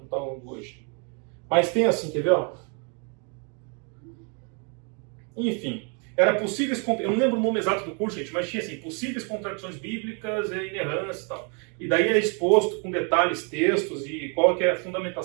está hoje. Mas tem assim, quer ver? Ó? Enfim, era possíveis, eu não lembro o nome exato do curso, gente, mas tinha assim, possíveis contradições bíblicas e inerrância e tal. E daí é exposto com detalhes, textos e qual que é a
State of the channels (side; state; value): left; quieter; 36.8 dB